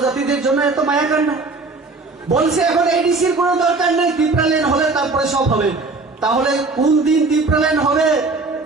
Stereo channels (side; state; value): left; quieter; 3.7 dB